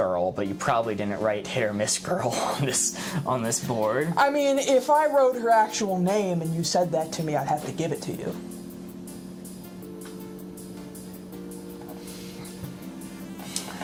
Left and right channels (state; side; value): identical; both; correlation 1.00